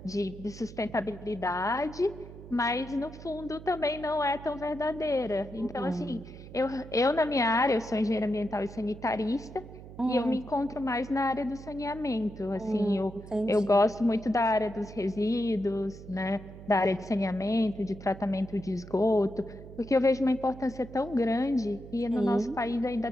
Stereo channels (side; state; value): right; noise; hum, 15 dB below the sound